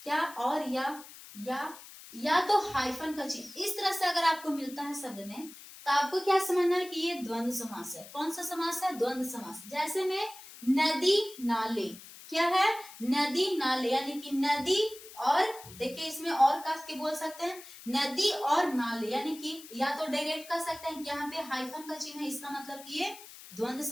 क्या, और या तो हाइफन का चिन्ह इस तरह से अगर आपको मिलता है शब्द में, तो आपको क्या समझना है कि ये द्वंद्व समास है। कौन सा समास है, द्वंद्व समास। जैसे में नदी नाले, क्या है, नदी नाले, यानी कि नदी और देखिए इसमें और कस के बोल सकते हैं, नदी और नाले, यानी कि या तो डायरेक्ट कर सकते हैं कि यहाँ पे हाइफन का चिन्ह है, इसका मतलब कि ये द्वंद्व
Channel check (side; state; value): left; noise; hiss, 17 dB below the sound